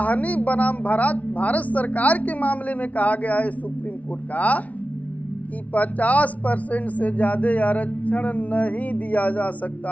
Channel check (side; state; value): right; late; 0.069 ms